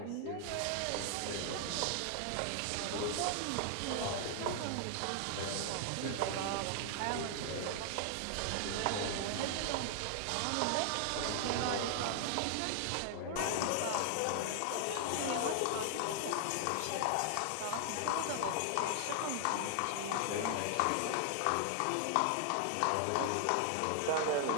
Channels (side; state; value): both; different; correlation 0.00